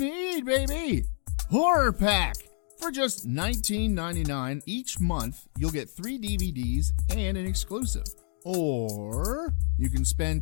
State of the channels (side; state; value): right; silent; digital silence